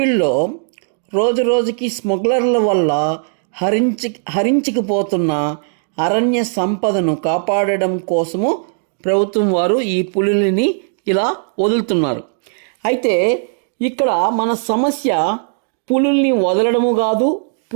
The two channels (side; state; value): left; silent; digital silence